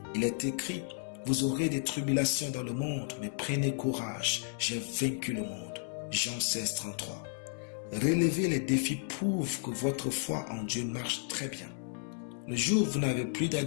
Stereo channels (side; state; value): right; silent; digital silence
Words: Il est écrit, vous aurez des tribulations dans le monde, mais prenez courage, j'ai vaincu le monde. Jean 16, 33. Relever les défis prouve que votre foi en Dieu marche très bien. Le jour où vous n'avez plus